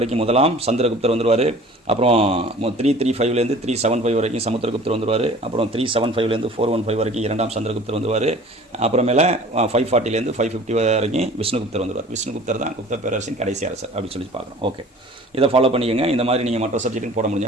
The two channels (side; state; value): both; normal; correlation 0.46